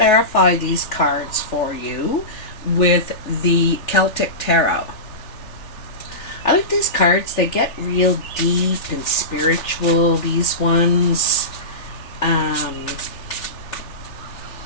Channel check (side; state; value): right; late; 3.4 ms